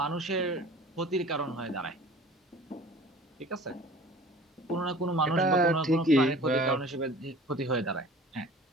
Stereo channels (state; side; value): normal; both; correlation 0.45